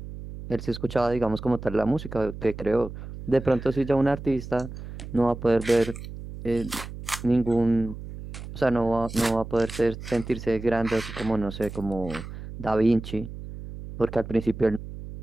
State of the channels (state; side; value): noise; right; hum, 11 dB below the sound